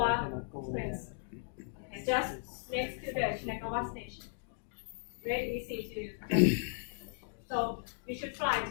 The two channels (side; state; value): right; silent; digital silence